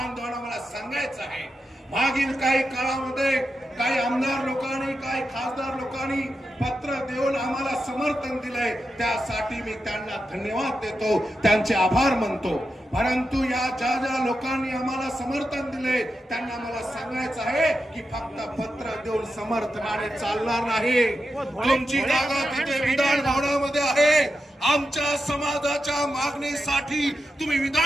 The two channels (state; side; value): normal; both; correlation 0.88